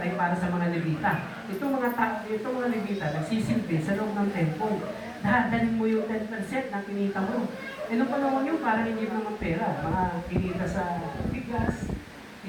para sa mga Levita. Itong mga Levita, nagsisilbi sa loob ng temple. Dadalhin mo yung 10% ng kinita mo. E nung panahon yun, parang hindi mo naman pera. Mga kinita sa bigas,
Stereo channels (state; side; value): identical; both; correlation 1.00